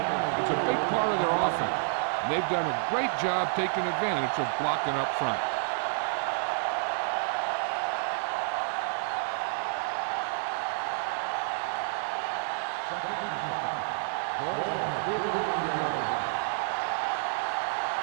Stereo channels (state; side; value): silent; left; digital silence